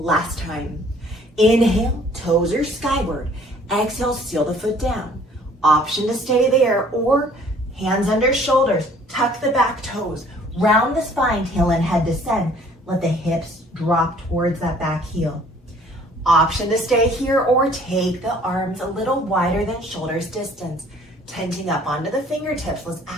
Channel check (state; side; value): normal; both; correlation 0.56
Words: time. Inhale, toes are skyward. Exhale, seal the foot down. Option to stay there or hands under shoulders. Tuck the back toes. Round the spine, tail and head descend. Let the hips drop towards that back heel. Option to stay here or take the arms a little wider than shoulders distance. Tenting up onto the fingertips. Let's